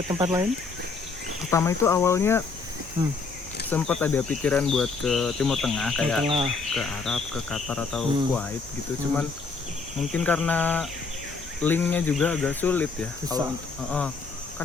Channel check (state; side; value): quieter; right; 4.4 dB